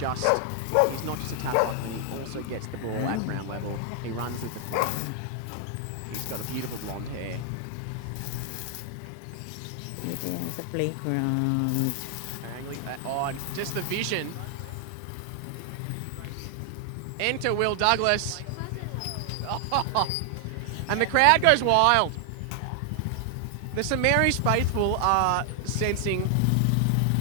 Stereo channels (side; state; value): both; different; correlation 0.00